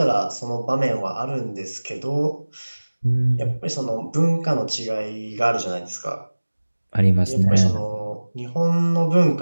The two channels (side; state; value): both; inverted; correlation -1.00